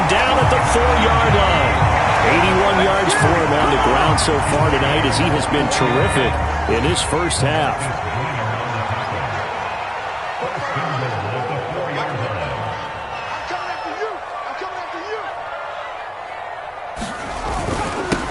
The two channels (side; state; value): both; identical; correlation 1.00